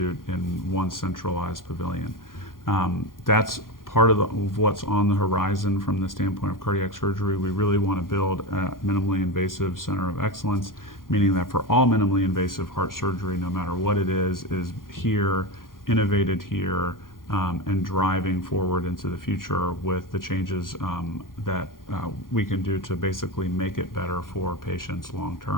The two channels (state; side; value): late; right; 0.91 ms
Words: in one centralized pavilion. That's part of what's on the horizon from the standpoint of cardiac surgery. We really want to build a minimally invasive center of excellence, meaning that for all minimally invasive heart surgery, no matter what it is here, innovated here, and driving forward into the future with the changes that we can do to basically make it better for patients long